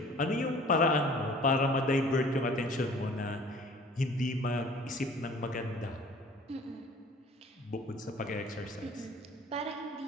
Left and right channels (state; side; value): normal; both; correlation 0.50